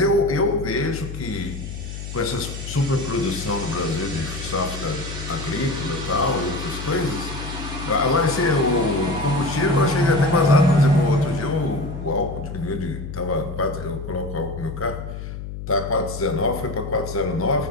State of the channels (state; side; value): noise; left; hum, 8 dB below the sound